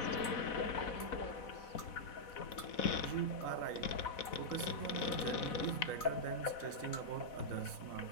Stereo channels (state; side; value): late; right; 4.1 ms